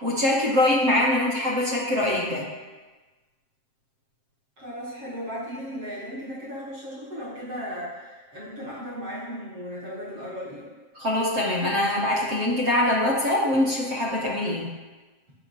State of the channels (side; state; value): left; late; 7.5 ms